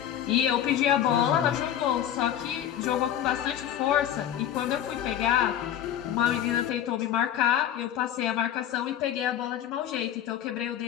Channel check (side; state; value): right; quieter; 10.7 dB